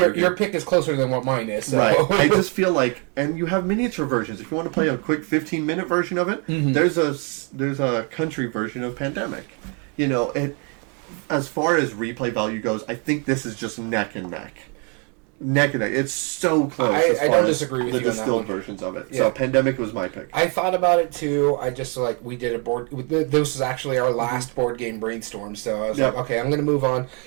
pick is closer than what mine is. So. Right. I just feel like, and you have miniature versions. If you want to play a quick 15-minute version of it, there's a country version of Pandemic. You know, as far as replay value goes, I think this is just neck and neck. Neck and neck. It's so close. I don't disagree with the you on that distilled one. versions of it. Yeah. So Pandemic was my pick. I thought about it too. I just we did a board. This is actually our last board game brainstorm. So I was like, okay, I'm going to move on.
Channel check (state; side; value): quieter; left; 36.0 dB